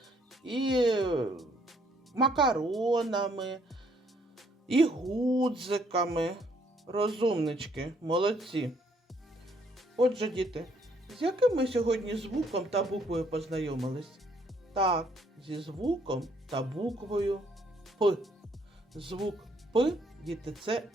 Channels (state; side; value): normal; both; correlation 0.67